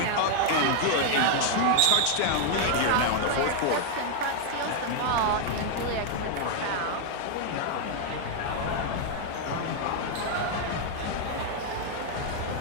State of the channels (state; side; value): different; both; correlation 0.00